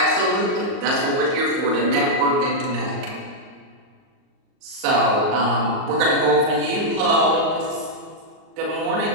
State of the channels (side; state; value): left; late; 38 ms